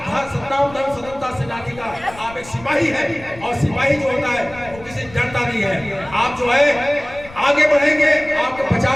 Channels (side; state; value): left; noise; rumble, 19 dB below the sound